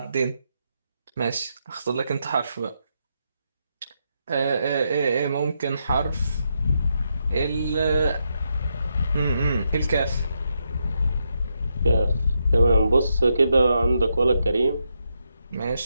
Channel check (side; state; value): both; inverted; correlation -0.82